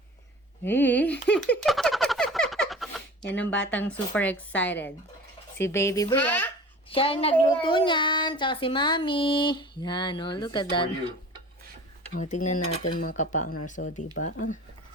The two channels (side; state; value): both; normal; correlation 0.40